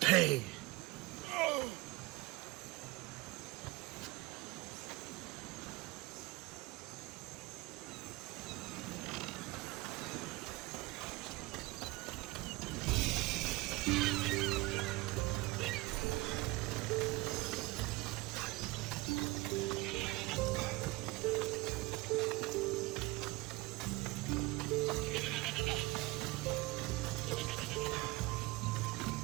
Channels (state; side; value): quieter; left; 21.2 dB